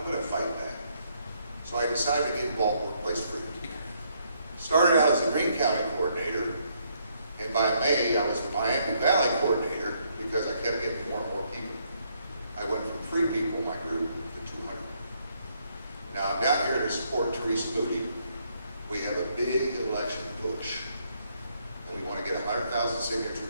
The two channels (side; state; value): both; inverted; correlation -0.72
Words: going to fight back. So I decided to get involved in Workplace Freedom. Started out as a Greene County coordinator, and by May I was the Miami Valley coordinator because I kept getting more and more people. I went from 3 people in my group to 200. Now I'm down here to support Teresa Moody. We have a big election push, and we want to get 100,000